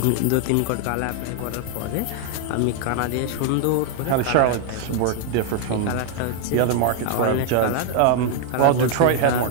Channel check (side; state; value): both; different; correlation 0.00